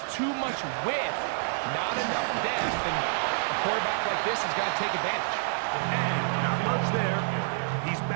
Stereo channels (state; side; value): silent; left; digital silence